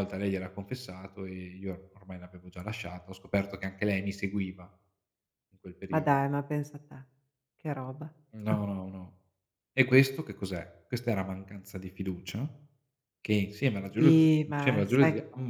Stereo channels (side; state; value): both; identical; correlation 1.00